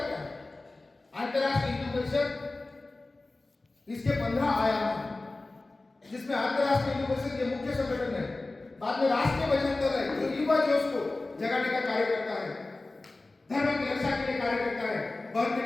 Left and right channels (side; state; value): right; quieter; 3.1 dB